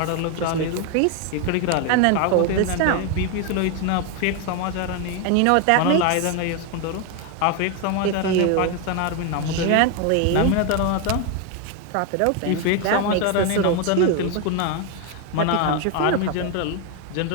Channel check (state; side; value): different; both; correlation 0.01